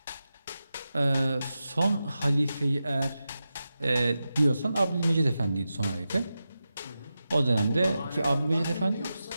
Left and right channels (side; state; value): both; inverted; correlation -0.92